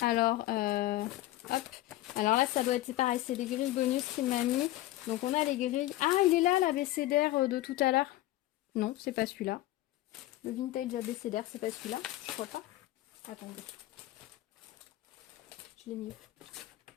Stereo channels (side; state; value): right; quieter; 16.0 dB